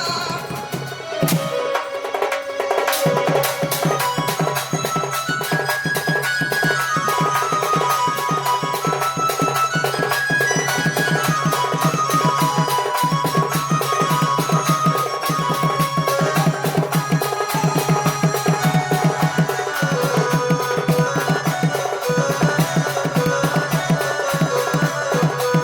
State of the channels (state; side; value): identical; both; correlation 1.00